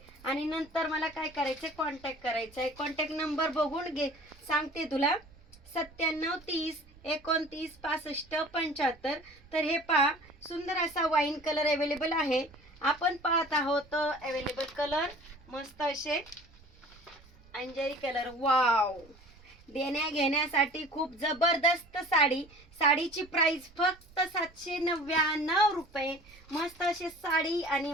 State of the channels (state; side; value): noise; right; rumble, 25 dB below the sound